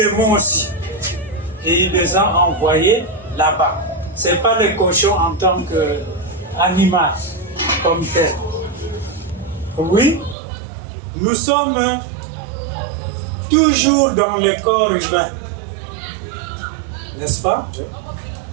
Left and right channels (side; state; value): left; drops out; at 10.4 s